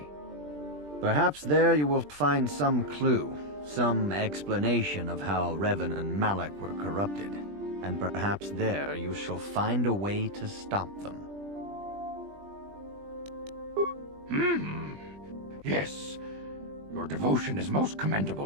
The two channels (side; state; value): left; late; 20 ms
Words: Perhaps there you will find some clue, some explanation of how Revan and Malak were corrupted, and perhaps there you shall find a way to stop them. Yes, your devotion is most